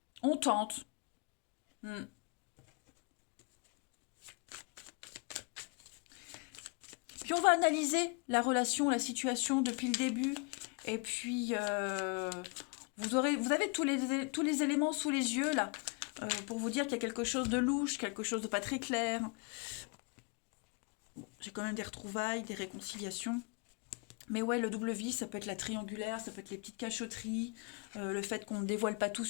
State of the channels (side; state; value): right; quieter; 33.3 dB